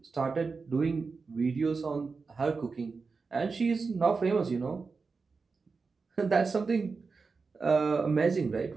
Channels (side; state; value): left; quieter; 4.6 dB